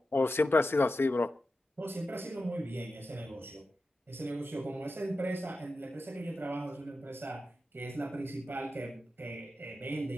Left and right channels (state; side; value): normal; both; correlation 0.91